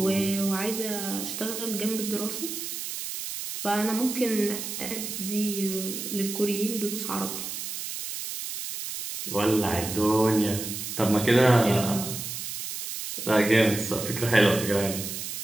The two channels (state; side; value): noise; right; hiss, 6 dB below the sound